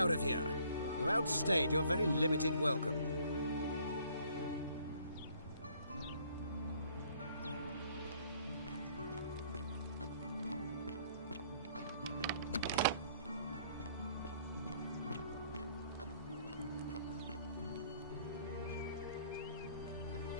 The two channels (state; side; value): inverted; both; correlation -0.61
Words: of here! You outstayed your very limited welcome.